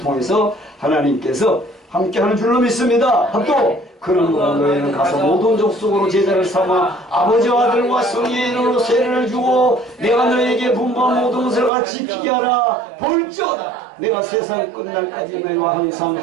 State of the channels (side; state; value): left; drops out; at 11.7 s